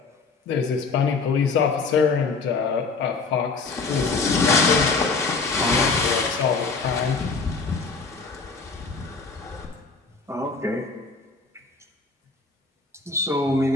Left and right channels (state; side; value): quieter; right; 4.3 dB